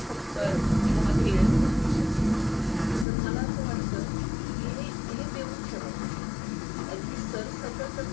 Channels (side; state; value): right; drops out; at 3.1 s